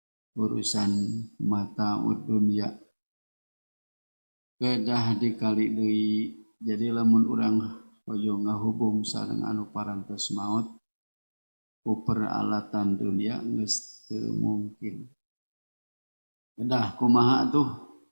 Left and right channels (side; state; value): both; inverted; correlation -1.00